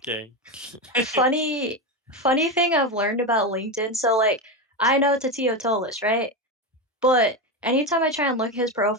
funny thing I've learned about LinkedIn, so, I know Tatio Tolis, right? But anytime I try and look at his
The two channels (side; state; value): both; normal; correlation 0.15